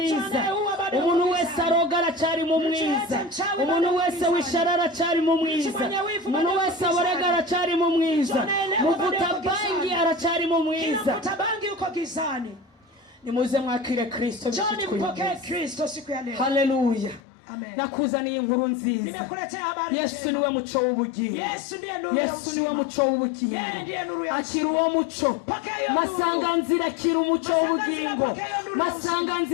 Umuntu wese aroga aracari mu mwiza. Umuntu wese wishara aracari mu mwiza. Umuntu wese aborega aracari mu mwiza. Muvuta bangi aracari mu mwiza. Muvuta bangi uko gizani. Nimuze mwakire Kristo. Njoni mpokee Kristo siku ya leo. Haleluya. Amen. Nakuzaniye inkuru nziza. Nimekuletea habari njema. Yesu niwe muco w'ubugingo. Yesu ndiye nuru ya uzima. Yesu niwe muco w'ubugingo. Yeye ndiye nuru ya uzima. Akira uwo muco. Masanganzira akira umuco w'ubugingo.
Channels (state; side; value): drops out; right; at 17.2 s